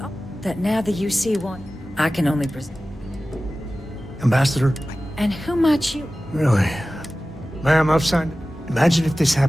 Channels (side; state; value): both; normal; correlation 0.96